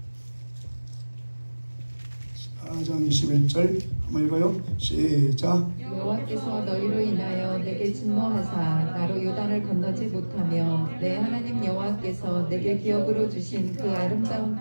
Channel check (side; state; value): both; inverted; correlation -1.00